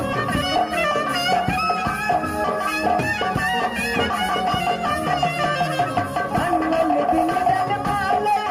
मंगल दिन जल माले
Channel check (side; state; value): both; identical; correlation 1.00